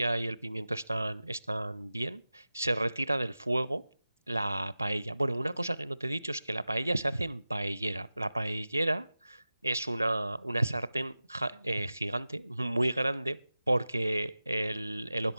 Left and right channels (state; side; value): inverted; both; correlation -0.95